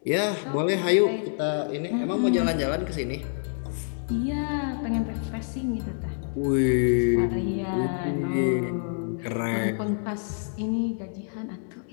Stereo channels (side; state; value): right; silent; 60 dB below the other